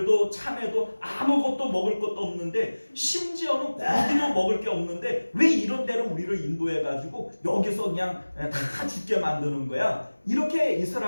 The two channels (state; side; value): inverted; both; correlation -1.00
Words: 참외도 아무것도 먹을 것도 없는데, 심지어는 고기도 먹을 게 없는데 왜 이런 데로 우리를 인도해가지고 여기서 그냥 다 죽게 만드는 거야? 이렇게